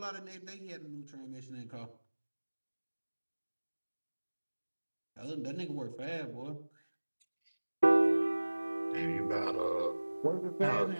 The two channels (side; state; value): both; inverted; correlation -1.00